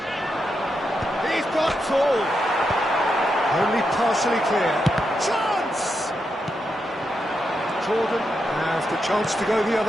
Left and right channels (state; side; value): normal; both; correlation 0.84